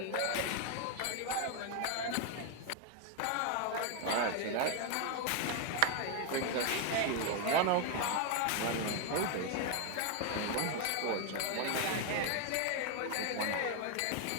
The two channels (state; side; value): different; both; correlation 0.01